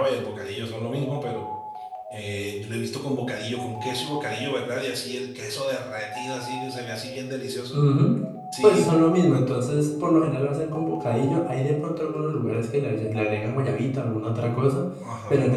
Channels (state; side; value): identical; both; correlation 1.00